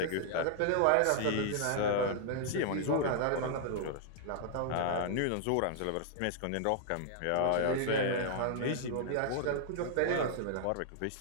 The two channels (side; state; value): both; different; correlation -0.01